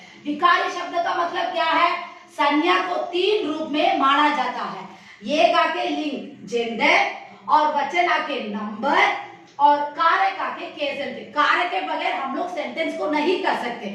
विकारी शब्द का मतलब क्या है, संज्ञा को तीन रूप में माना जाता है। ये आके लिंग जेंडर, और वचन आके नंबर, और कारक आके केसेंट। कारक के बगैर हम लोग सेंटेंस को नहीं कर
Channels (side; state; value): both; identical; correlation 1.00